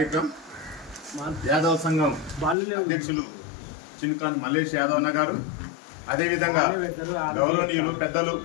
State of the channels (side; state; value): right; drops out; at 2.6 s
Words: యాదవ్ సంఘం అధ్యక్షులు చిన్కాన్ మల్లేష్ యాదవ్ అన్న గారు, అదేవిధంగా గౌరవనీయులు పెద్దలు